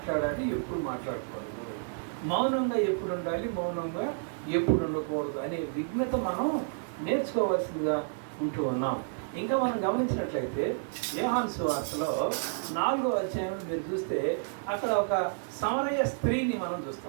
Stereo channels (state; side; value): silent; left; 58 dB below the other